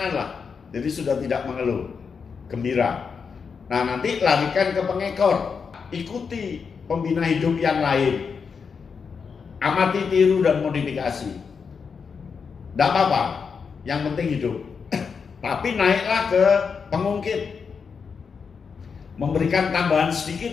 lah. Jadi sudah tidak mengeluh, gembira. Nah, nanti larikan ke pengekor. Ikuti pembina hidup yang lain. Amati, tiru, dan modifikasi. Tidak apa-apa, yang penting hidup. Tapi naiklah ke pengungkit. Memberikan tambahan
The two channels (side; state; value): right; quieter; 5.8 dB